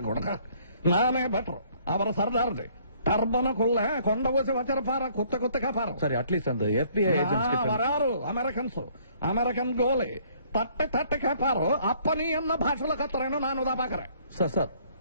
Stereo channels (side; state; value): both; inverted; correlation -0.61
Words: கூட நானே பெட்டர். அவர் சர்தார்து டர்பனுக்குள்ள கொண்ட ஊசி வச்சிருப்பாரு, குத்து குத்து கேப்பாரு. சரி, அட்லீஸ்ட் அந்த FBI ஏஜென்ட்ஸ் வராரு అమెరికన్స్, అమెరికన్ గోలి తట్టి తట్టి కేపారు. అప్ప నీ అన్న భాషలో కత్తరేను నాను దా పాకరే. సార్